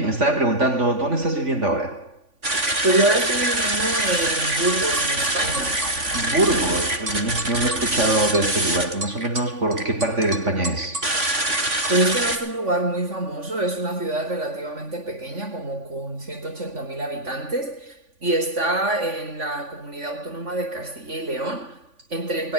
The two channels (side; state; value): left; late; 3.5 ms